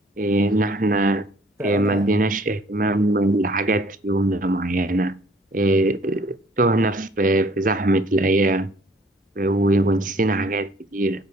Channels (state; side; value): normal; both; correlation 0.57